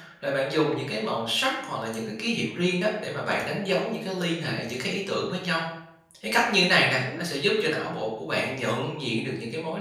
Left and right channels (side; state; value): both; identical; correlation 1.00